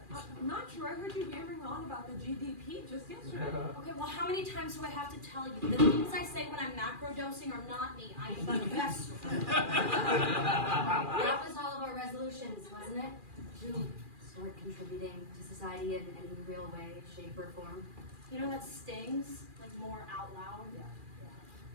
I'm not sure. I heard you yammering on about the GDP just yesterday. Okay, well, how many times do I have to tell you? The things I say when I'm macro dosing are not me. I am the best. That was all of our resolutions, wasn't it? To start contributing to society in any real way, shape, or form. You know, that stings, more out loud. Yeah.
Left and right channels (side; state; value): left; late; 2.4 ms